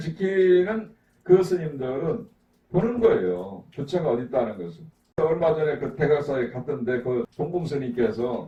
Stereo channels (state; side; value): identical; both; correlation 1.00